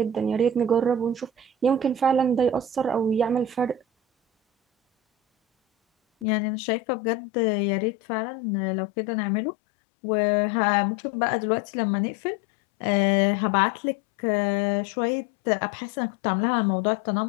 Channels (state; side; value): drops out; right; at 6.2 s